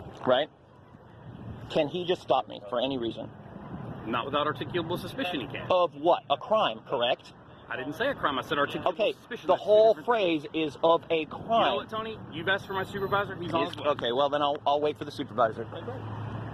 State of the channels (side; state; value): both; identical; correlation 1.00